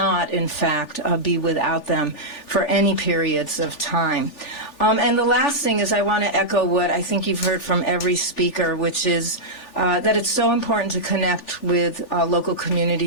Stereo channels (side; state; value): right; late; 3.4 ms